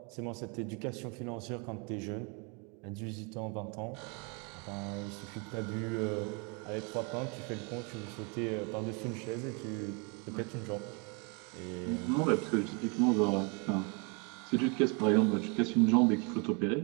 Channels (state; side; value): quieter; left; 33.2 dB